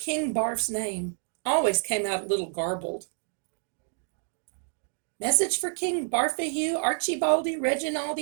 Barf's name always came out a little garbled. Message for King Bartholomew Archibaldi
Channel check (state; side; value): silent; left; 56 dB below the other